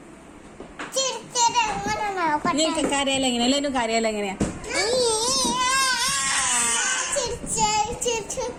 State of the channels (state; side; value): identical; both; correlation 1.00